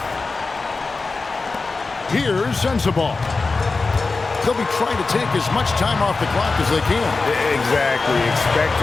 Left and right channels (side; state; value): right; quieter; 3.9 dB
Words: Here's Sensabaugh. They'll be trying to take as much time off the clock as they can. Exactly. Expect